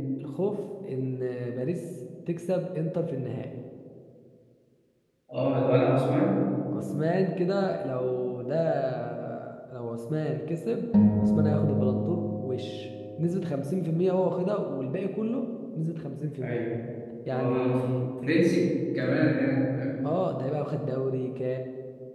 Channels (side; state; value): both; identical; correlation 1.00